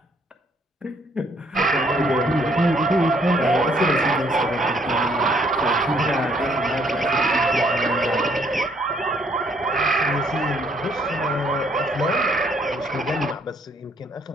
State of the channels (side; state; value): both; normal; correlation 0.66